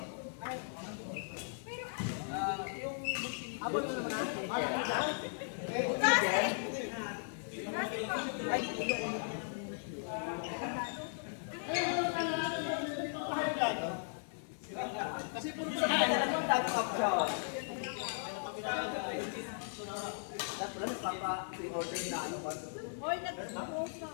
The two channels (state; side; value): silent; right; 53 dB below the other